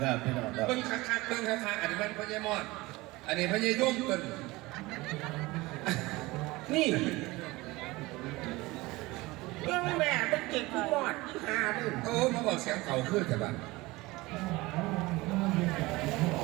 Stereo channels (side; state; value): left; quieter; 21.1 dB